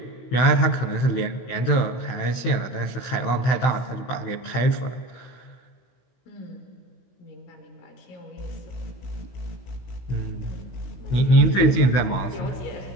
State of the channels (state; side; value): late; right; 16 ms